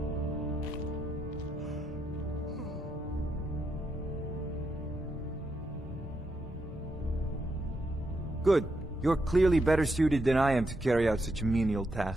Good. You're clearly better suited than I am to carry out such a menial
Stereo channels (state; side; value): normal; both; correlation 0.82